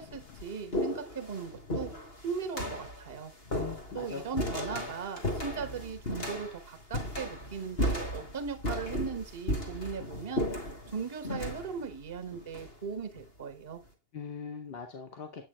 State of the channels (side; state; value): right; late; 2.8 ms